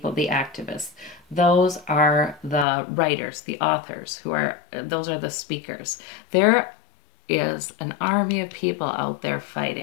the activists. Those are the writers, the authors, those are the speakers. There is an army of people out there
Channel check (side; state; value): right; drops out; at 2.7 s